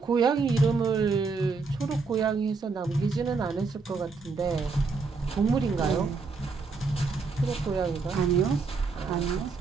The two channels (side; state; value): left; quieter; 4.4 dB